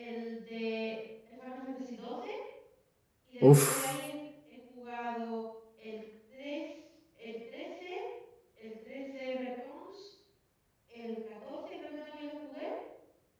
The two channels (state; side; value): identical; both; correlation 1.00